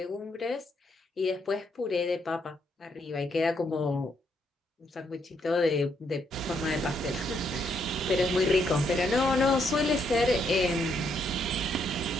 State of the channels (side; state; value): both; normal; correlation 0.74